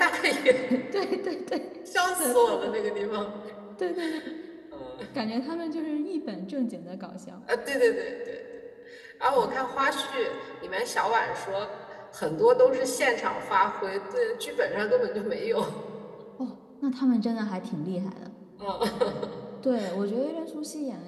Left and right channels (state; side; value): identical; both; correlation 1.00